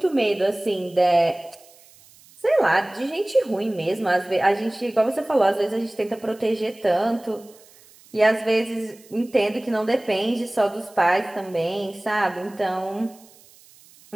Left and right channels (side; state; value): right; noise; hiss, 26 dB below the sound